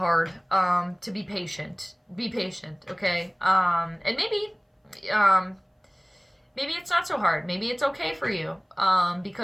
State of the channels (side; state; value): both; identical; correlation 1.00